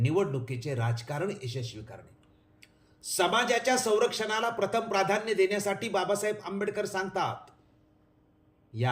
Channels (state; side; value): identical; both; correlation 1.00